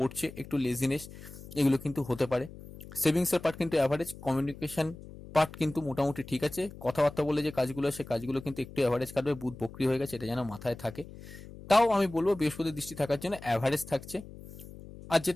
একটু লেজিনেস এগুলো কিন্তু হতে পারে। সেভিংসের পার্ট কিন্তু অ্যাভারেজ, কমিউনিকেশন পার্ট কিন্তু মোটামুটি ঠিক আছে। কথাবার্তা বলে যে কাজগুলো, সে কাজগুলো কিন্তু একটু অ্যাভারেজ কাটবে, বুধ বক্রি হয়ে গেছে, এটা যেন মাথায় থাকে। তাও আমি বলবো বৃহস্পতির দৃষ্টি থাকার জন্য অ্যাভারেজ থাকছে। আর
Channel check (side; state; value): left; noise; hum, 16 dB below the sound